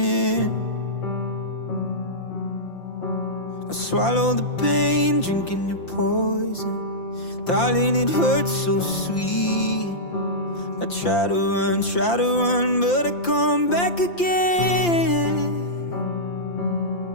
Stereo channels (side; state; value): right; late; 5.8 ms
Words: I swallow the pain, drinking your poison. Darling, it hurts so sweet. I try to run, but I come back again.